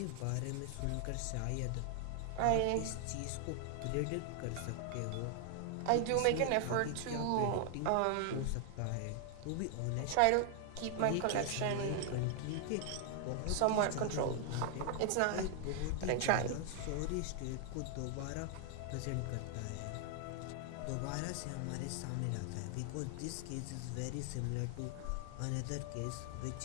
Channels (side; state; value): both; different; correlation 0.00